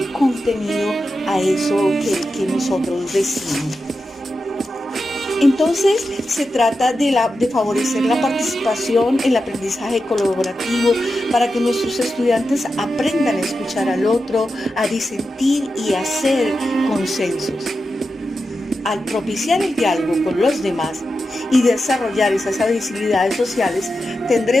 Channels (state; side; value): normal; both; correlation 0.90